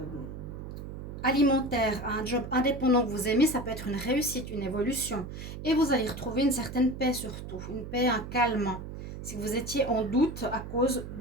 alimentaire à un job indépendant que vous aimez, ça peut être une réussite, une évolution. Et vous allez retrouver une certaine paix surtout, une paix, un calme, si vous étiez en doute à cause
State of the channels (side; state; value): right; noise; hum, 9 dB below the sound